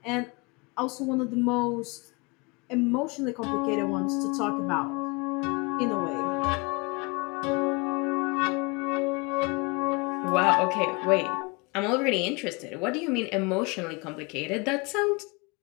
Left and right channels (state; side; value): quieter; right; 28.5 dB